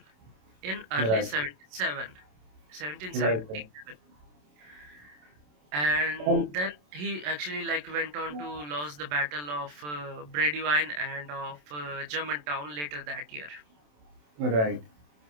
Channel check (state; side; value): late; left; 27 ms